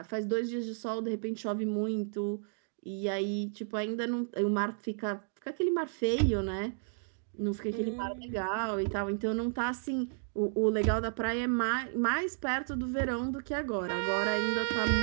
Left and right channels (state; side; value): silent; left; digital silence